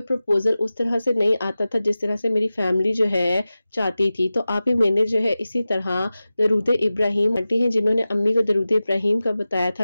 प्रपोजल उस तरह से नहीं आता था जिस तरह से मेरी फैमिली जो है चाहती थी। तो आप ही मैंने जो है इसी तरह दरूद इब्राहिम आंटी हैं जिन्होंने अम्मी को दरूद इब्राहिम का बताया था,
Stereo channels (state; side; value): inverted; both; correlation -0.95